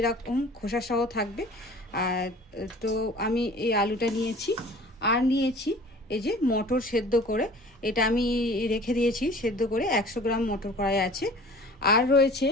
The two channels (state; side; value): normal; both; correlation 0.45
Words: খোসা সহ থাকবে। আর তো আমি এই আলুটা নিয়েছি। আর নিয়েছি এই যে মটর সেদ্ধ করে, এটা আমি রেখে দিয়েছি সেদ্ধ করে, 100 গ্রাম মটর কড়াই আছে। আর রয়েছে